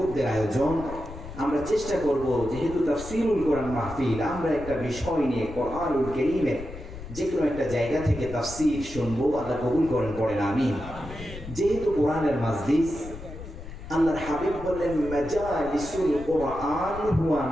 আয়োজন, আমরা চেষ্টা করব যেহেতু তাফসিরুল কোরআন মাহফিল, আমরা একটা বিষয় নিয়ে কোরআনুল কারীমের যে কোনো একটা জায়গা থেকে তাফসির শুনবো। আল্লাহ কবুল করেন, পড়েন আমিন। যেহেতু কোরআনের মাজলিস, আল্লাহর হাবিব বললেন মাজালিসুল কোরআন হুয়া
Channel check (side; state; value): left; noise; rumble, 12 dB below the sound